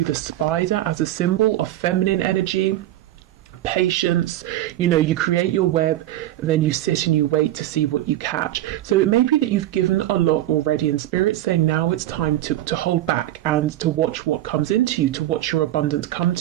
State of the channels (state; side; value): quieter; left; 14.2 dB